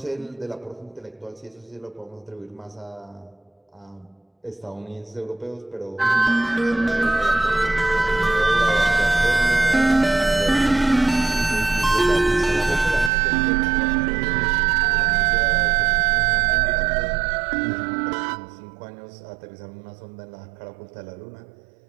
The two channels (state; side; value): drops out; left; at 13.1 s